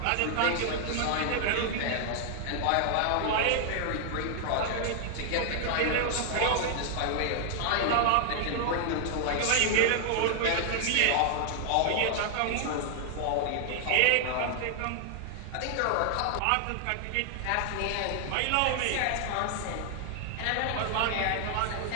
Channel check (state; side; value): different; both; correlation 0.00